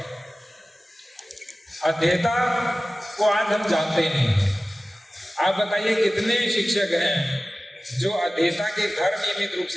अध्येता को आज हम जानते ही नहीं। आप बताइए कितने शिक्षक हैं जो अध्येता के घर नियमित रूप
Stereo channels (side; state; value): both; normal; correlation 0.97